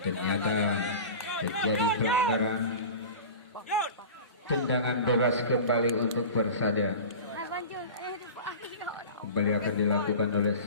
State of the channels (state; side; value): inverted; both; correlation -0.33